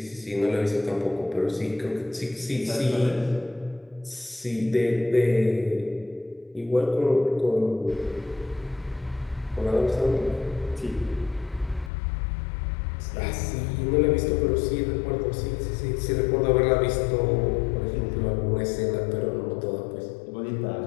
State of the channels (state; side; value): drops out; right; at 11.9 s